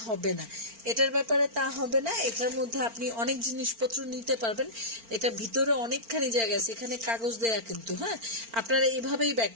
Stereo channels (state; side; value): late; left; 4.4 ms